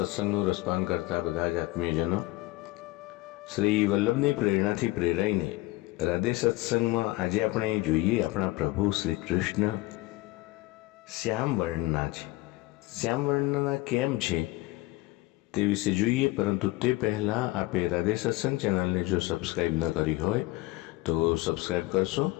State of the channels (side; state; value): right; quieter; 19.7 dB